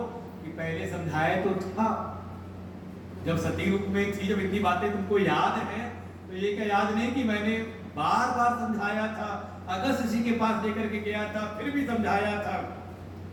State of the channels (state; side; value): identical; both; correlation 1.00